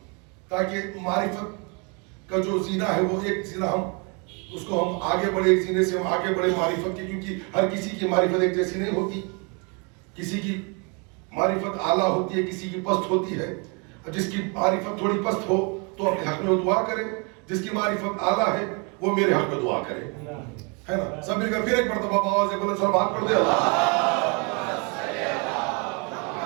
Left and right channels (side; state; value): left; quieter; 33.4 dB